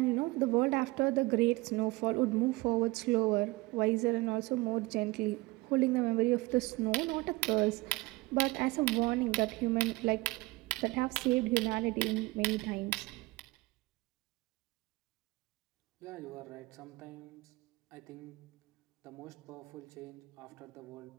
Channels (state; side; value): quieter; left; 21.7 dB